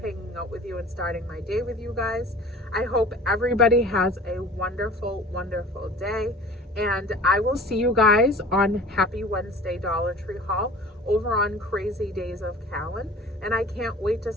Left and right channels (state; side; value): normal; both; correlation 0.43